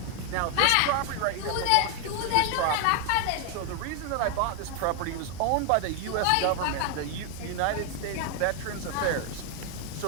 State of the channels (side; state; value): both; different; correlation 0.01